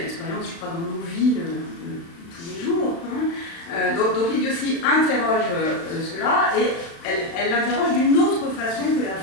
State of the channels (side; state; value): right; late; 35 ms